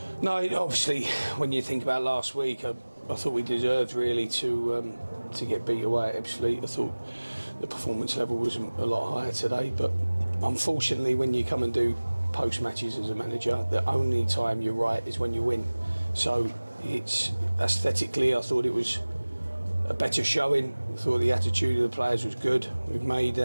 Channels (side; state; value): both; inverted; correlation -1.00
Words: No, obviously, when you think about last week, I thought we deserved really to get beat away at Ebbsfleet. I thought the performance level was a lot higher today, but unfortunately, when you come and do post matches as a manager, the only time you're right is when you win. So it's aesthetically, I thought it was a better showing. I thought the attitude of the players was good. We've made